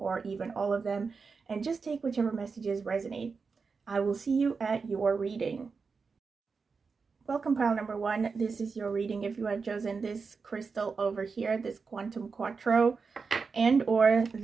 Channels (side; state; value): left; quieter; 4.9 dB